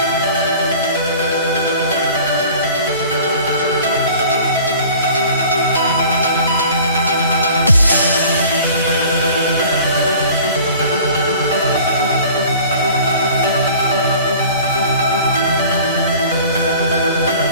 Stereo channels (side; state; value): both; inverted; correlation -0.46